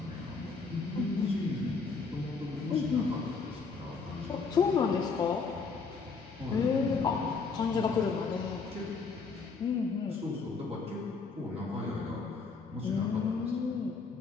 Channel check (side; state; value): right; quieter; 4.7 dB